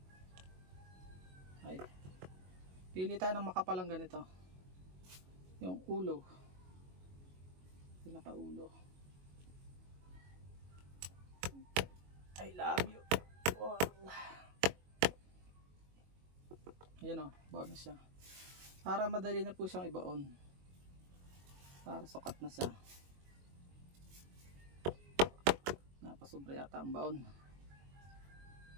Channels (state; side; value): late; left; 22 ms